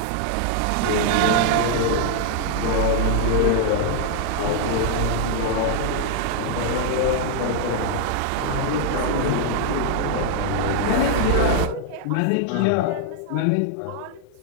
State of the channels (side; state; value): both; different; correlation 0.00